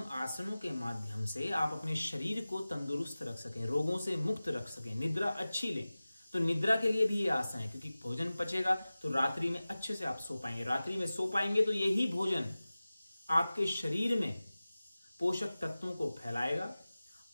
आसनों के माध्यम से आप अपने शरीर को तंदुरुस्त रख सकें, रोगों से मुक्त रख सकें, निद्रा अच्छी लें। तो निद्रा के लिए भी ये आसन है, क्योंकि भोजन पचेगा तो रात्रि में अच्छे से आप सो पाएंगे। रात्रि में सो पाएंगे तो यही भोजन आपके शरीर में पोषक तत्वों को फैलाएगा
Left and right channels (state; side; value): inverted; both; correlation -0.97